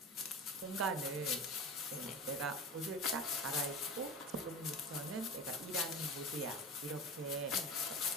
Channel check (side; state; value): both; normal; correlation 0.31